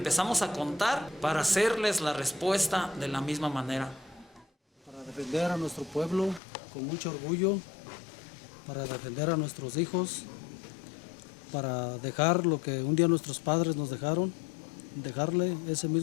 a contar para hacerles la respuesta de la misma manera. Para defender a nuestro pueblo con mucho orgullo, para defender a nuestros hijos, para dejar lo que un día nuestros padres nos dejaron, dejarle ese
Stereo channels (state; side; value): drops out; right; at 6.4 s